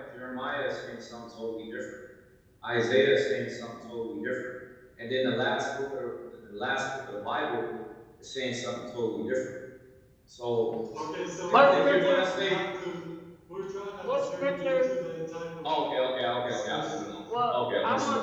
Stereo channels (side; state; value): both; identical; correlation 1.00